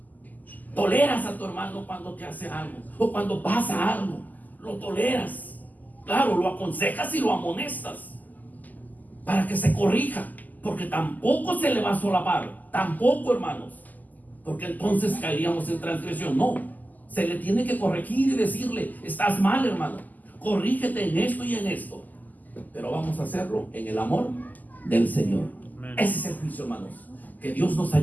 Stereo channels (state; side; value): late; right; 0.082 ms